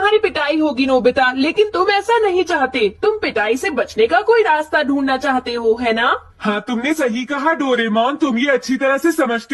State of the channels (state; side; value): identical; both; correlation 1.00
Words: पिटाई होगी नोबिता, लेकिन तुम ऐसा नहीं चाहते। तुम पिटाई से बचने का कोई रास्ता ढूंढना चाहते हो, है ना? हाँ, तुमने सही कहा डोरेमोन। तुम ये अच्छी तरह से